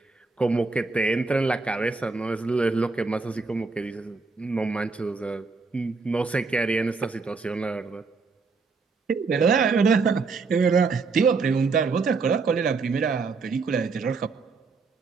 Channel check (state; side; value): quieter; left; 4.4 dB